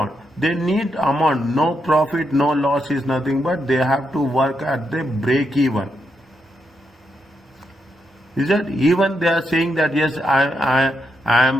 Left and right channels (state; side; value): normal; both; correlation 0.82